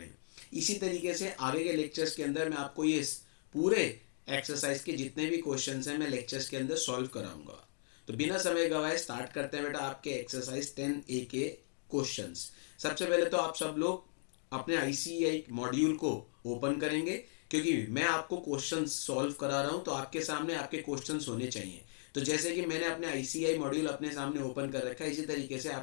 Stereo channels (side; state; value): right; silent; digital silence